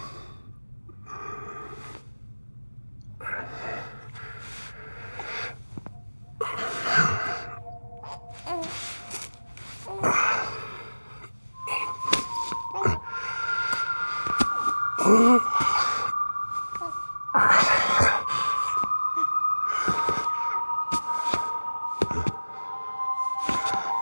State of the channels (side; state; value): both; inverted; correlation -1.00